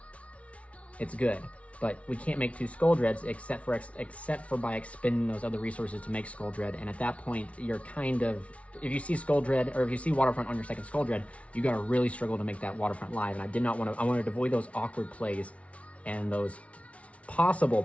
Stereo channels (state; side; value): late; right; 0.064 ms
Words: it's good. But we can't make 2 Skull Dreads except for by expending those other resources to make Skull Dread. And at that point, you're kind of, if you see Skull Dread, or if you see Waterfront on your second Skull Dread, you gotta really struggle to make that Waterfront live. And I wanted to avoid those awkward plays and those possible